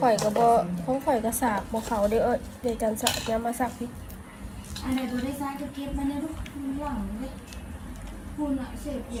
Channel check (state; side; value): identical; both; correlation 1.00